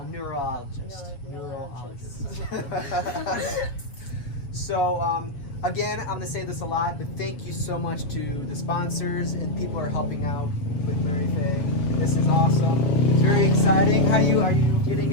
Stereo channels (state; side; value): late; right; 7.1 ms